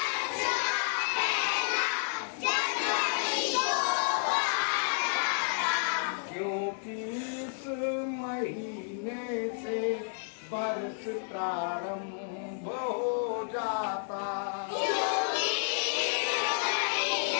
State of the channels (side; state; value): right; silent; digital silence